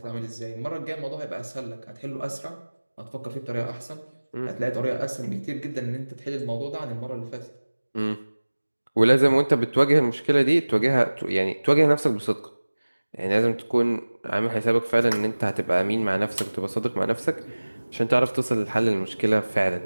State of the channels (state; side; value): inverted; both; correlation -1.00